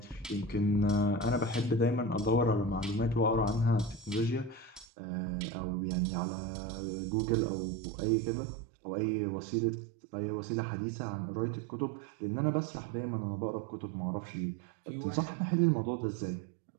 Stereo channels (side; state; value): left; drops out; at 4.9 s